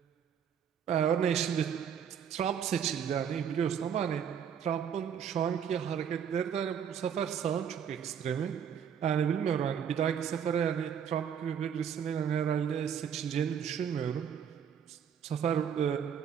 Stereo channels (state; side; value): quieter; left; 8.1 dB